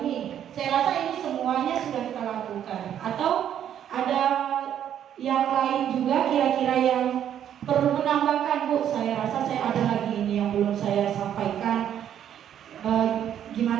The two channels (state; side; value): quieter; left; 9.9 dB